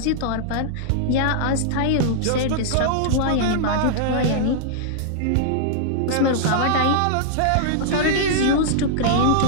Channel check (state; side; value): different; both; correlation -0.01